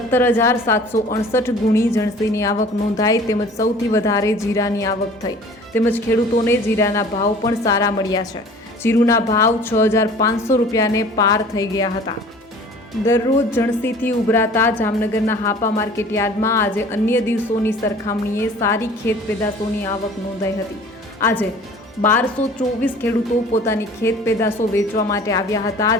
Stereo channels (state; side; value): normal; both; correlation 0.47